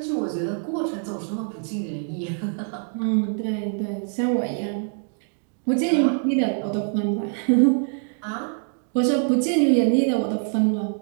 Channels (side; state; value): left; silent; 62 dB below the other